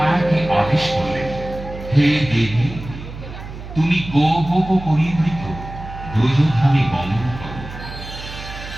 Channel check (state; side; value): noise; right; hum, 12 dB below the sound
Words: আদেশ করলেন, হে দেবী, তুমি গোপ পরিবৃত ব্রজধামে গমন করো।